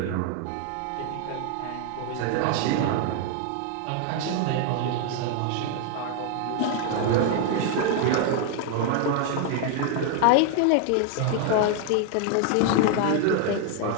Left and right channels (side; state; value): both; different; correlation 0.00